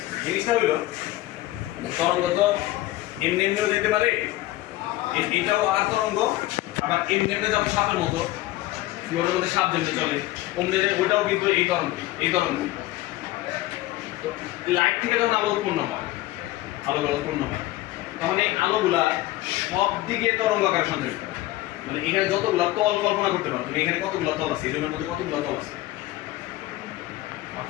জিনিসটা হইলো তরঙ্গ তো এমনি এমনিও যেতে পারে, এটাও আর তরঙ্গ, আবার এমনি এমনি যেমন সাপের মতো ফ্লোরের মধ্যে সাপ যেমনি চলে অমনি ওটাও কিন্তু এই তরঙ্গ। তো লাইট থেকে যখন আলো উৎপন্ন হয়, উৎপন্ন হয়, তখন এই আলোগুলা সব দিকে তরঙ্গ আকারে সঞ্চারিত হয়। মানে এখানে যতগুলা তল কল্পনা করতে পারো তুমি, এখানে কতগুলা তল আছে, এই রুমের মধ্যে কতগুলা তল আছে?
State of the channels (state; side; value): quieter; right; 17.0 dB